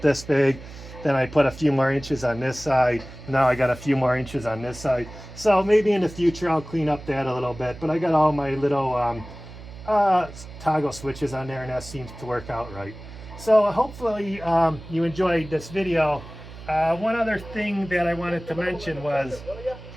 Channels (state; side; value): noise; right; hum, 15 dB below the sound